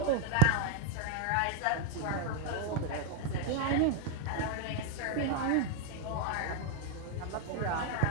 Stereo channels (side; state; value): both; different; correlation 0.00